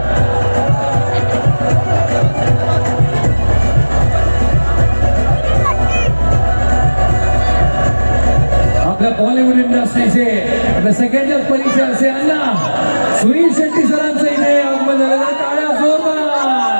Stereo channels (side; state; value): both; inverted; correlation -1.00